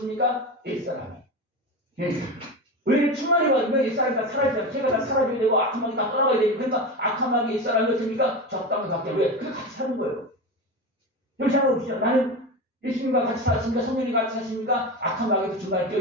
옛사람이. 왜 충만히 받으면 옛사람이 다 사라지잖아요. 제가 다 사라져야 되고 악한 마귀 다 떠나가야 되고, 그러니까 악한 마귀 옛사람이 어떻습니까? 적당히 받게. 왜? 그게 같이 사는 거예요. 여기 생각해 보시죠. 나는 예수님과 같이 사십니까? 성령이 같이 사십니까? 악한 마귀도 중간에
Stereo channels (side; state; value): both; normal; correlation 0.23